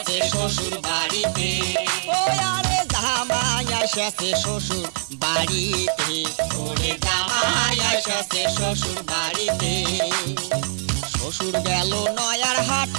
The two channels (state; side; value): silent; left; digital silence